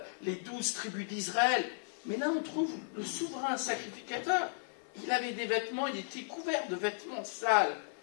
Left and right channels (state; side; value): silent; right; 54 dB below the other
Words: les 12 tribus d'Israël. Mais là on trouve le souverain sacrificateur, il avait des vêtements, il était couvert de vêtements sales,